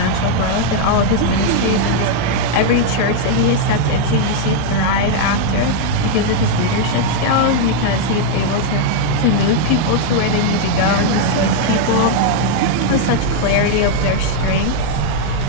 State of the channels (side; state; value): both; different; correlation 0.00